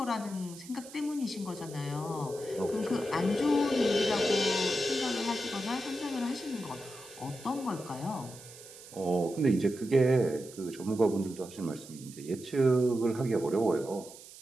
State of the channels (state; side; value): noise; right; hiss, 17 dB below the sound